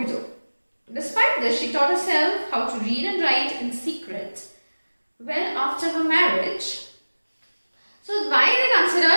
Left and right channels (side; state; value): both; inverted; correlation -1.00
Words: Despite this, she taught herself how to read and write in secret. Well, after her marriage, so why they